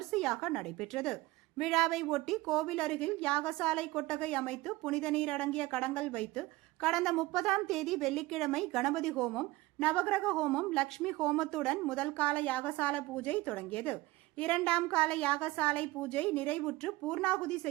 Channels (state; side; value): quieter; left; 19.8 dB